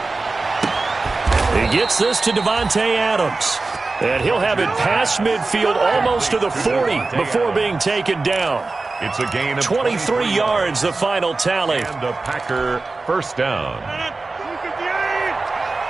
He gets this to Davante Adams. And he'll have it past midfield almost to the 40 before being taken down. It's a gain of 23 yards, the final tally. And a Packer first down.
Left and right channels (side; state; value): left; quieter; 3.6 dB